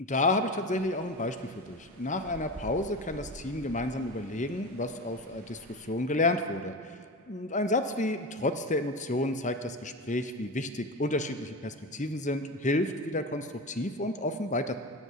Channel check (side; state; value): both; normal; correlation 0.24